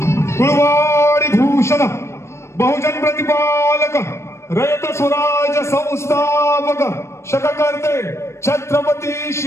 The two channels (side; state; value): right; late; 0.13 ms